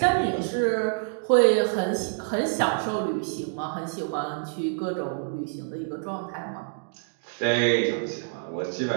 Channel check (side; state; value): left; silent; digital silence